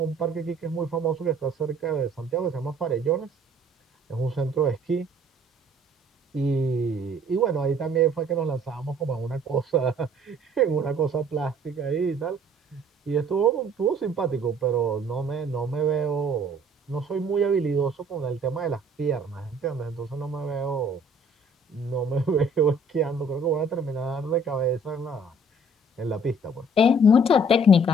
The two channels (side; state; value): both; normal; correlation 0.56